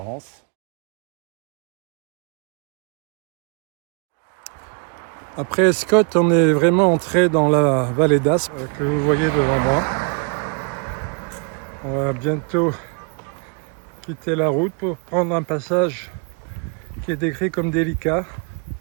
Après Escotte, on est vraiment entré dans la vallée d'Aspe que vous voyez devant moi. On va bientôt quitter la route pour prendre un passage qui est décrit comme délicat,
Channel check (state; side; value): quieter; left; 37.7 dB